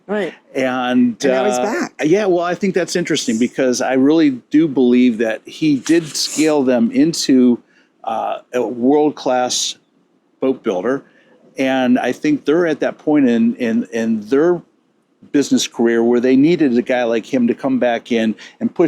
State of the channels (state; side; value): identical; both; correlation 1.00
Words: Right. And now he's back. Yeah, well, I think that's interesting because I really do believe that he did scale them into a world-class boat builder. And I think they're at that point in their business career where they needed a guy like him to come back in and